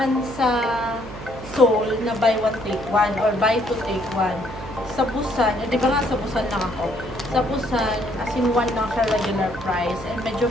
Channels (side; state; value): right; noise; hum, 14 dB below the sound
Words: sa Seoul na buy one take one or buy two take one. Sa Busan, di ba nga sa Busan lang ako? Sa Busan, as in one lang siya regular price and medyo